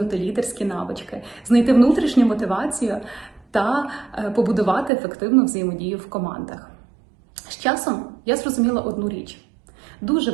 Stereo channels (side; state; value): left; drops out; at 4.9 s